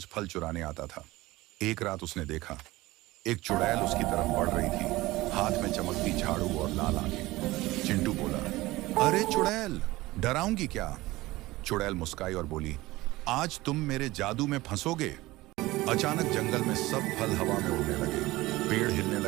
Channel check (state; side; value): quieter; left; 19.1 dB